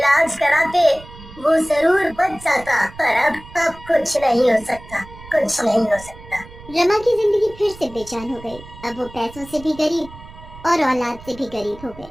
कराते, वो जरूर बच जाता। पर अब कुछ नहीं हो सकता, कुछ नहीं हो सकता। रमा की जिंदगी फिर से बेचैन हो गई। अब वो पैसों से भी गरीब और औलाद से भी गरीब हो गए।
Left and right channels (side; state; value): right; noise; rumble, 18 dB below the sound